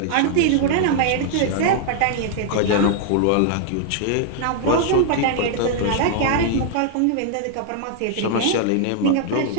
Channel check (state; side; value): different; both; correlation -0.01